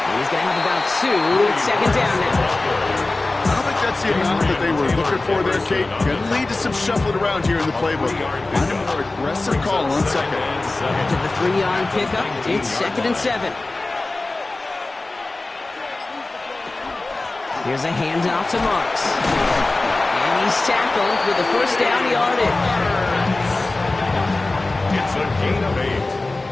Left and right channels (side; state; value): right; quieter; 3.1 dB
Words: he's going to have about 2. It's second down now. I don't think that's the amount that they were looking for there, Kate. Going to lead to some shuffling around here in the playbook. Find a more aggressive call on second. After the 3-yard pickup, it's 2nd and 7. Here's a handoff to Marks. And he's tackled with the first down yardage. It's a gain of 8.